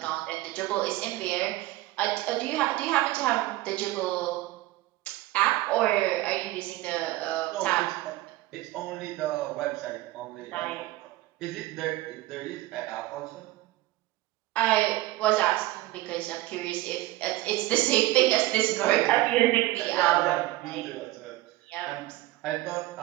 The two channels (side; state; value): left; quieter; 17.5 dB